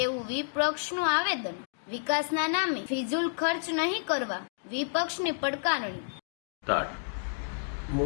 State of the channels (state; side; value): silent; right; digital silence